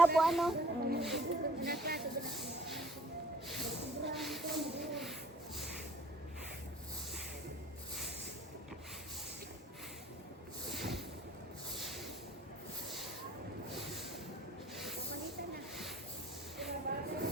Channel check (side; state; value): both; normal; correlation 0.53